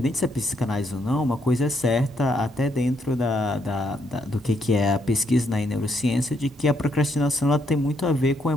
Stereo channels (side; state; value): both; normal; correlation 0.75